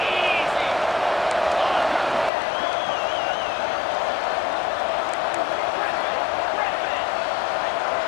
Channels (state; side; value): drops out; right; at 2.3 s